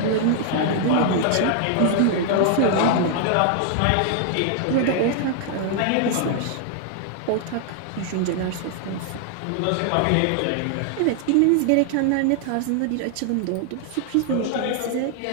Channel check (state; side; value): different; both; correlation 0.00